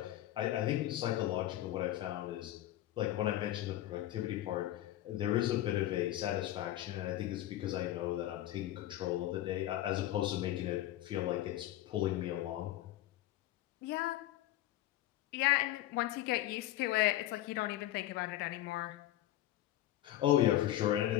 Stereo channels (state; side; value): quieter; right; 14.2 dB